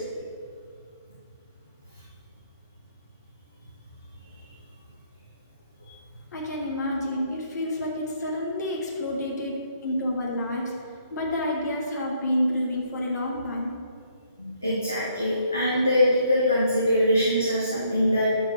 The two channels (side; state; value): both; inverted; correlation -0.68